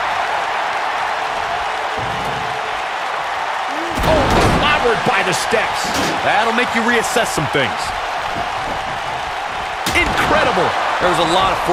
Oh, clobbered by the steps. That'll make you reassess some things. Incredible. There was a lot of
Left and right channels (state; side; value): identical; both; correlation 1.00